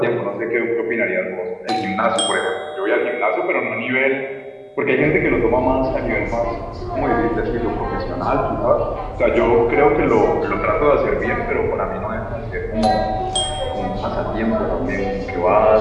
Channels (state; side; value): identical; both; correlation 1.00